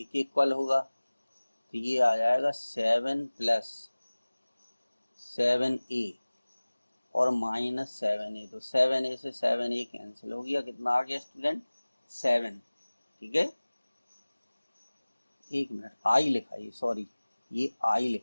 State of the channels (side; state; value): both; inverted; correlation -1.00